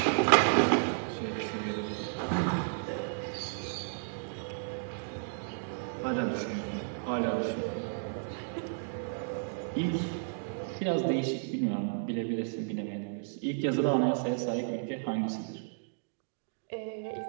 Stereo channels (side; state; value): left; silent; digital silence